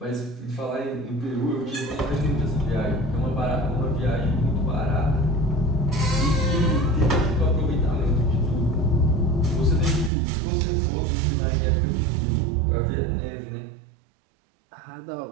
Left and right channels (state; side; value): drops out; left; at 10.1 s